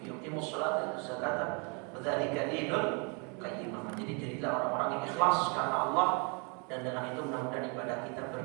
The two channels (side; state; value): left; quieter; 34.7 dB